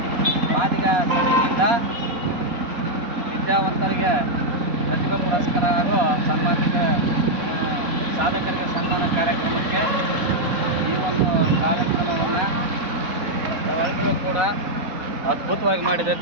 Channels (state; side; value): late; left; 4.1 ms